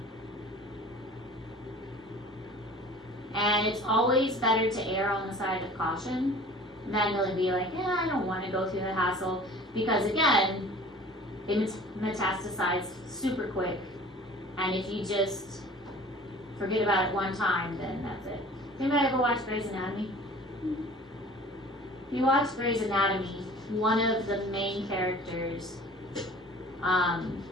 And it's always better to err on the side of caution than to be like, yeah, I don't want to go through the hassle, because again, they metastasize super quick, and if you just forget about it one time, then that's it. Anybody ever watch Grey's Anatomy? If you watch Grey's Anatomy, one of the main characters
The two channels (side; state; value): both; normal; correlation 0.45